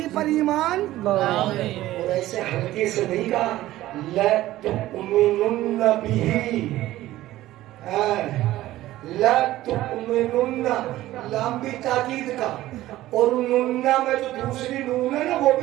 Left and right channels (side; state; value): left; quieter; 15.5 dB